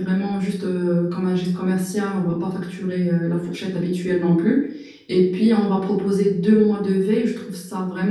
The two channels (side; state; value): both; identical; correlation 1.00